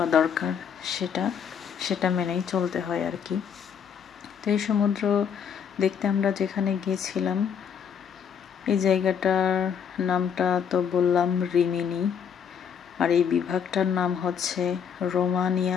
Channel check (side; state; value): right; quieter; 7.5 dB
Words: দরকার, সেটা মেনেই চলতে হয় আর কি। তো এই সমুদ্র দেখতে আমরা যেখানে গিয়েছিলাম, এই জায়গাটার নামটা তো বললাম রিমিনি, আর এই বিভাগটার নাম হচ্ছে